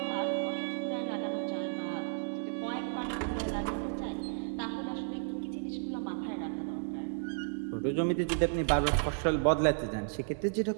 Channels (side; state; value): left; silent; digital silence